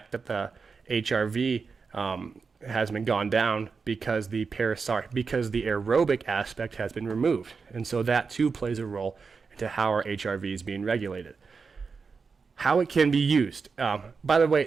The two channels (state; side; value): quieter; left; 5.0 dB